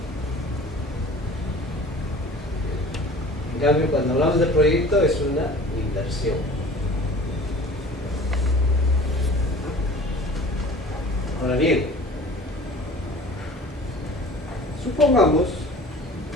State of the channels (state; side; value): normal; both; correlation 0.44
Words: En cambio, cuando hablamos de proyecto es una inversión. Ahora bien, supongamos